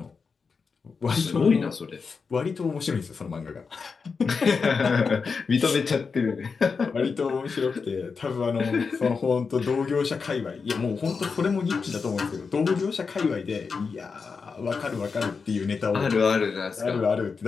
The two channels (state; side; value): quieter; right; 5.1 dB